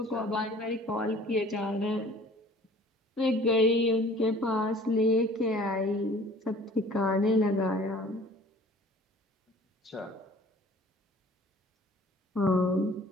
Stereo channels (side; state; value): both; normal; correlation 0.50